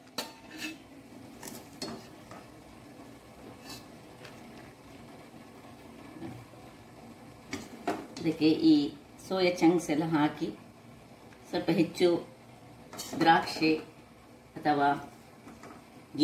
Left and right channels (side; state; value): both; identical; correlation 1.00